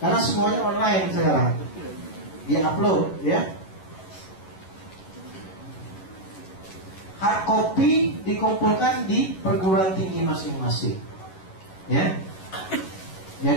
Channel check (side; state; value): right; late; 11 ms